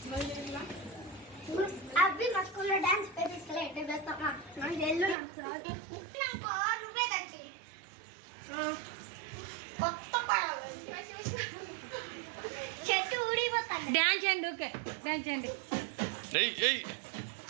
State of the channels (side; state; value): left; drops out; at 5.2 s